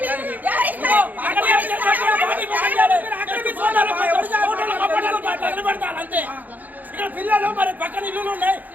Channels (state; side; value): late; left; 0.082 ms